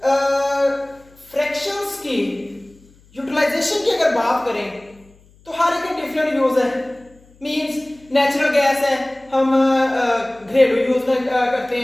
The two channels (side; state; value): left; noise; hum, 29 dB below the sound